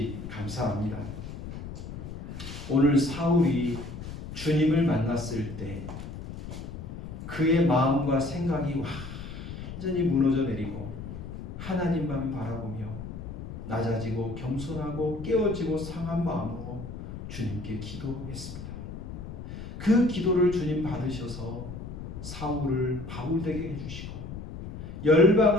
감사합니다. 오늘 사울이 주님을 만났을 때 그의 마음과 생각이 완전히 무너져 내리고 하나님만 바라보며 낮아지고 겸손하고 깨어지고 상한 마음으로 주님께 기도했습니다. 그 기도를 주님 받으셔서 사울을 바울되게 해주시고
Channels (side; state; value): left; noise; rumble, 9 dB below the sound